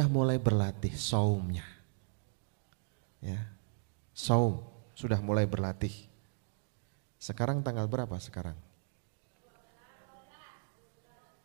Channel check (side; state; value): left; silent; digital silence